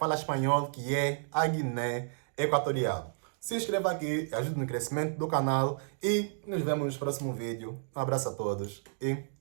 espanhol, que é a Guiné Equatorial. Se inscreva aqui, ajude no crescimento do canal e nos vemos no próximo vídeo. Um abraço a todos e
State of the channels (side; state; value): left; silent; digital silence